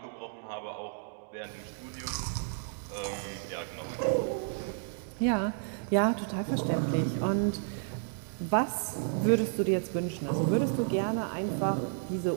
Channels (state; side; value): silent; left; digital silence